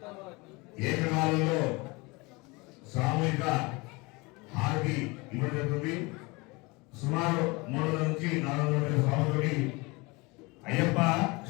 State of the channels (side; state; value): right; quieter; 25.5 dB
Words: ఏకకాలంలో సామూహిక హారతి ఇవ్వబడుతుంది. సుమారు 300 నుంచి 400 స్వాములకి అయ్యప్ప